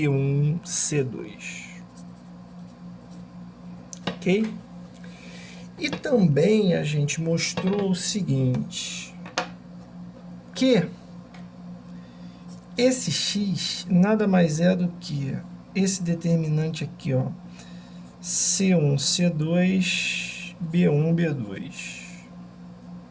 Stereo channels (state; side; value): identical; both; correlation 1.00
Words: Ok? E também a gente mostrou o seguinte, que esse x nada mais é do que esse determinante aqui, ó, C1, C2, B1, B2,